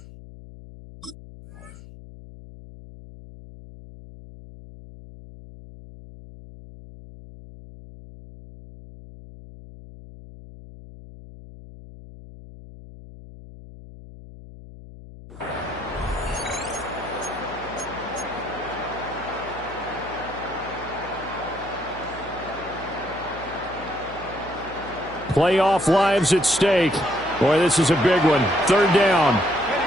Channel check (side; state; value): left; noise; hum, 17 dB below the sound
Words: Playoff lives at stake. Boy, this is a big one. Third down.